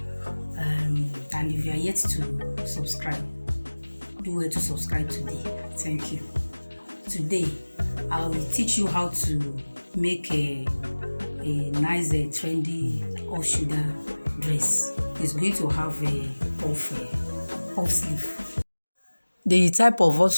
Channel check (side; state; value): both; inverted; correlation -1.00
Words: and if you are yet to subscribe, do well to subscribe today. Thank you. Today I will teach you how to make a nice trendy off shoulder dress. It's going to have a puff sleeve. The type of off